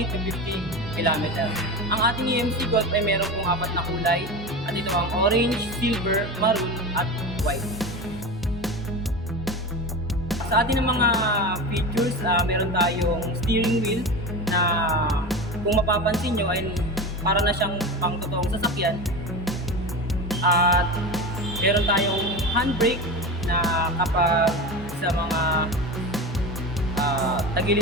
to 50 km. Ang ating EMC-GOLF ay meron pong 4 na kulay at ito ang orange, silver, maroon at white. Sa ating mga features, meron tayong steering wheel na kung mapapansin nyo ay para na siyang pang totoong sasakyan. At meron tayong handbrake na kapag sa mga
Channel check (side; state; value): both; normal; correlation 0.26